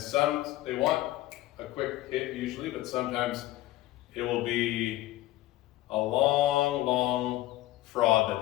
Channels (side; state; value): right; quieter; 16.5 dB